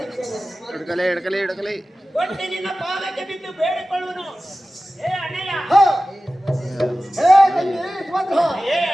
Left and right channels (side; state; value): both; normal; correlation 0.95